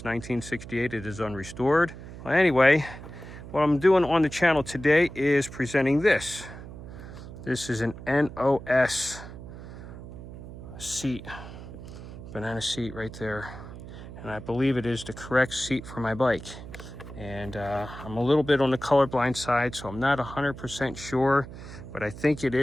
1968. It is unrestored. Well, anyway, what I'm doing on the channel today is presenting this. This is an NOS seat, banana seat right there. And I believe it is the correct seat for my bike. And I'm a little bit on the colorblind side, so I'm not 100% sure, but I think it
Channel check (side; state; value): right; noise; hum, 13 dB below the sound